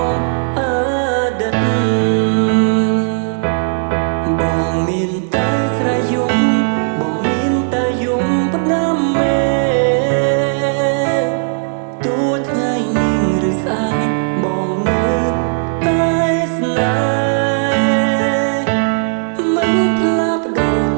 ងអតីតបងមានតែស្រ័យយំបងមានតែយំផ្ដាំមេទោះថ្ងៃនេះឬស្អែកបងនៅតែស្នេហ៍មិនផ្លាស់ប្ដូរ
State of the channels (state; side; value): silent; left; digital silence